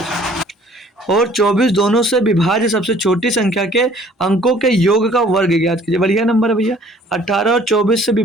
और 24 दोनों से विभाज्य सबसे छोटी संख्या के अंकों के योग का वर्ग ज्ञात कीजिए। बढ़िया नंबर है भैया, 18 और 24 से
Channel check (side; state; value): both; normal; correlation 0.55